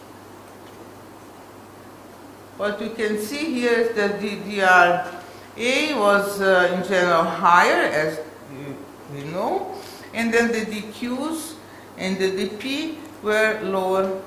what you can see here is that the DRA was in general higher, as we know, and then the DQs and the DP were lower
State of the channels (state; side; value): identical; both; correlation 1.00